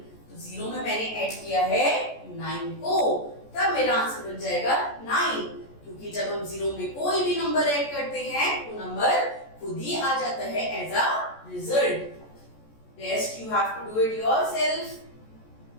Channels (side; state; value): right; late; 14 ms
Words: तो 0 में मैंने ऐड किया है 9 को, तब मेरा आंसर बन जाएगा 9। क्योंकि जब हम 0 में कोई भी नंबर ऐड करते हैं वो नंबर खुद ही आ जाता है as a result. Rest you have to do it yourself.